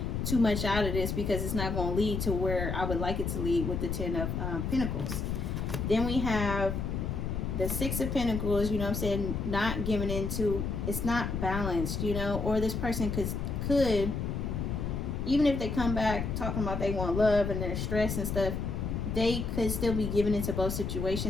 too much out of this because it's not going to lead to where I would like it to lead with the Ten of Pentacles. Then we have the Six of Pentacles, you know what I'm saying, not giving into, it's not balanced, you know, or this person could even if they come back talking about they want love and they're stressed and stuff, they could still be given into both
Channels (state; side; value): noise; left; rumble, 2 dB below the sound